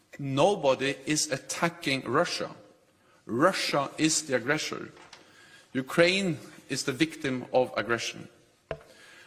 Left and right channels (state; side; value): identical; both; correlation 1.00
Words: Nobody is attacking Russia. Russia is the aggressor. Ukraine is the victim of aggression.